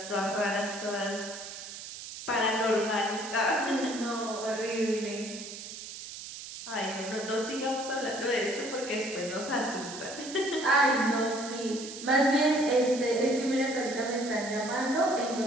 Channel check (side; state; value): right; noise; hiss, 11 dB below the sound